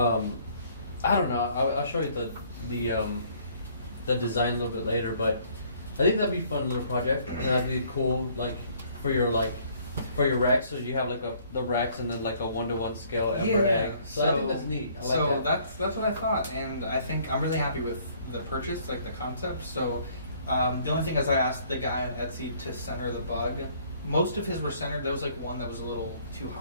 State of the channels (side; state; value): both; inverted; correlation -0.61